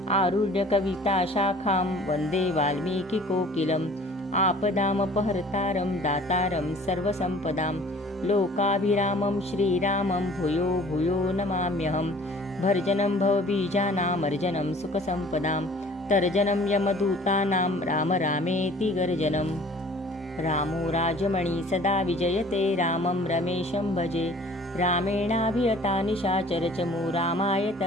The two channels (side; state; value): both; normal; correlation 0.50